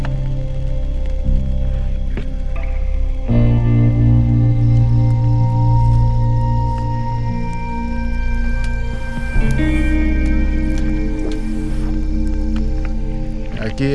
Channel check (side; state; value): both; identical; correlation 1.00